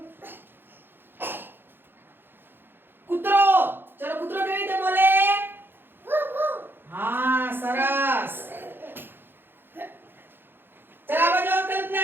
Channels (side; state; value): left; late; 0.10 ms